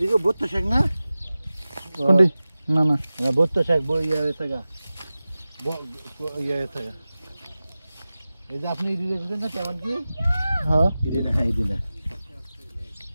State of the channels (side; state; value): both; inverted; correlation -0.96